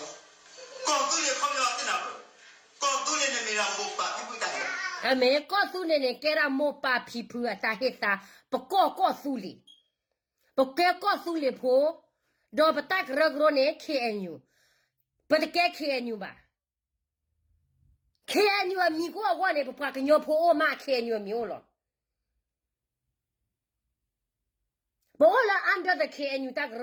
对了，靠不了在哪个？搞对了，你没让我把你不打的。啊，没告诉你呢，给他莫把皮肤啊，打黑啥，不告诉你，不该告诉你婆，都不打个肉呢，看你，不得该看你吧？看你啊，米过我呢，不把个鸟婆我妈看你没有了。不了，按照的看你打个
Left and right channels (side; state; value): both; identical; correlation 1.00